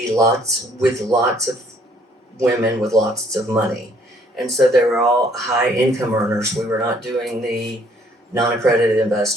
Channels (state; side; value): normal; both; correlation 0.63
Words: lots of women with lots of money. And so they were all high income earners. We were not doing the non-accredited